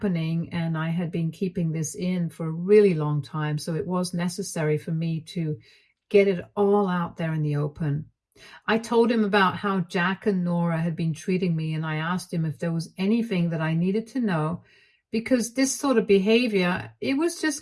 and I had been keeping this in for a really long time. So it was necessary for me to get it all out there in the open. I told him about how Jack and Nora had been treating me, and I asked him if there was anything that I needed to know, because this sort of behavior, it was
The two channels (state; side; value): identical; both; correlation 1.00